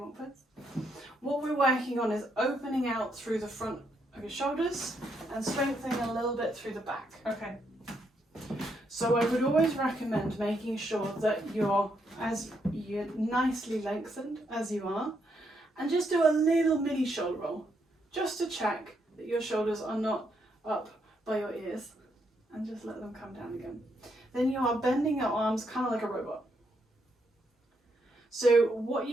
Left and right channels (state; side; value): normal; both; correlation 0.77